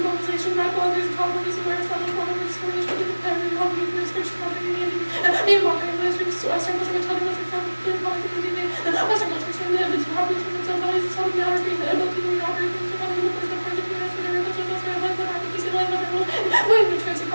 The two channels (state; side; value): inverted; both; correlation -1.00